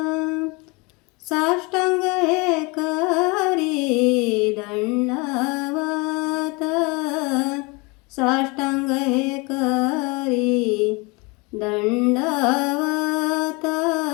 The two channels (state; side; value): quieter; right; 27.6 dB